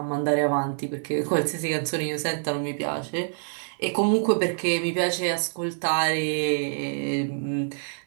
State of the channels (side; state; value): left; silent; digital silence